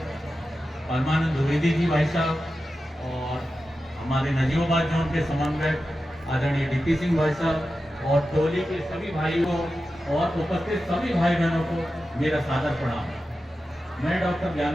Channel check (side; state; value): both; normal; correlation 0.92